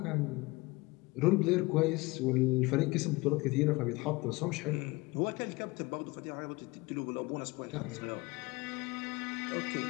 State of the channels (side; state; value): right; quieter; 23.3 dB